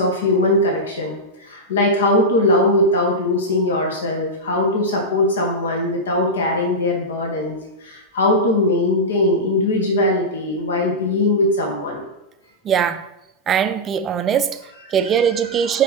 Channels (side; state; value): both; normal; correlation -0.07